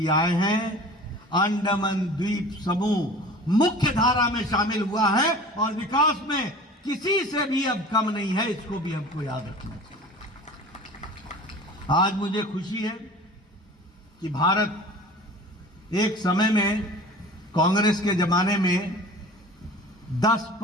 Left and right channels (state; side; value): normal; both; correlation 0.41